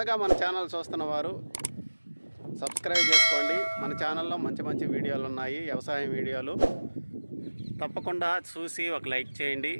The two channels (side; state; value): both; inverted; correlation -1.00